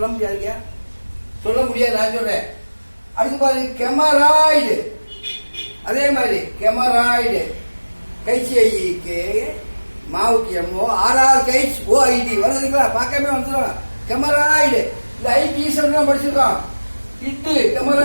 முடியாதுங்க, சொல்ல முடியாது. நான் சொல்றேன். அடுத்து பாருங்க கெமராய்டு. அதே மாதிரி கெமராய்டு கைசிஐக்கு மாவுக்கு எம்மோ ஆர்ஆர் கைஸ் ஓஐடி வருதுங்களா? பார்க்கவே வந்துடும். கெமராய்டு இந்த ஐடி ஈஸ்வரன் படிச்சிருக்கோம். இட்டு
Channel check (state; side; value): inverted; both; correlation -1.00